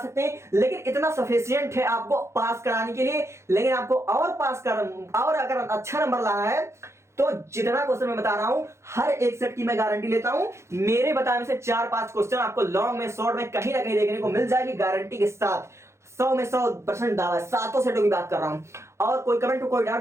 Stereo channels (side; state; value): left; late; 0.13 ms